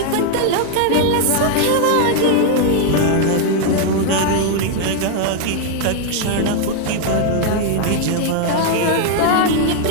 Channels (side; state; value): both; different; correlation 0.00